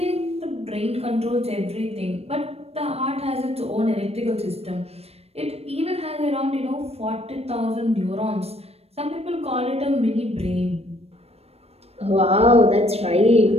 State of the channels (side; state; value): left; late; 0.29 ms